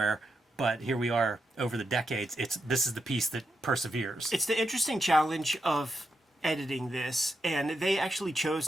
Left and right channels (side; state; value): both; normal; correlation 0.85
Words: but here we are over the decades. This is the piece that perseveres. It's the interesting challenge of editing this, and they actually chose